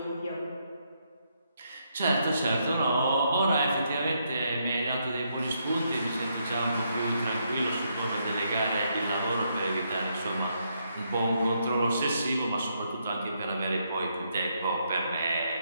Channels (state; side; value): inverted; both; correlation -0.77